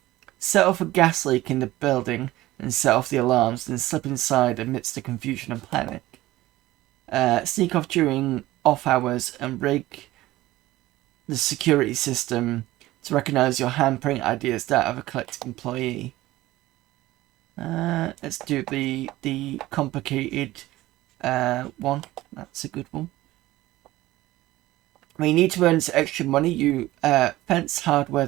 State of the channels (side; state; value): left; quieter; 17.0 dB